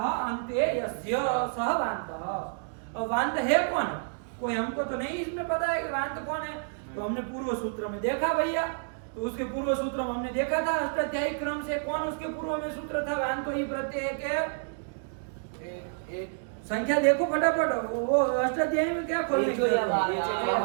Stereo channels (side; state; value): left; silent; digital silence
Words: अन्ते यस्य सः वान्तः। और वान्त है कौन? कोई हमको तो नहीं इसमें पता है कि वान्त कौन है। तो हमने पूर्व सूत्र में देखा भैया, तो उसके पूर्व सूत्र में हमने देखा था अष्टाध्यायी क्रम से कौन उसके पूर्व में सूत्र था? वान्तो ही प्रत्यय के संख्या देखो फटाफट, वो अष्टाध्यायी में क्या खोलने की